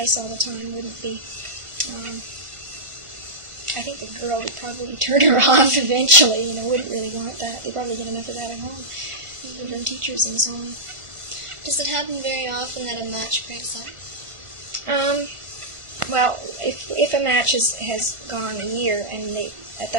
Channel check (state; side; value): late; left; 1.5 ms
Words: all the time wouldn't be. I think the girl would probably turn her off eventually. Wouldn't really want that. They probably get enough of that at home, from teachers and so on. Does it happen very often that a match breaks up? Well, if a match has gone a year, and at